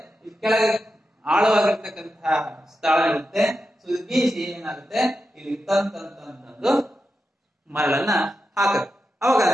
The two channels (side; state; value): both; normal; correlation 0.89